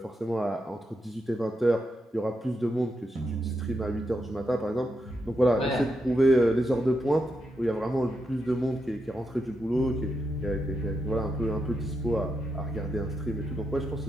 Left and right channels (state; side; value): normal; both; correlation 0.84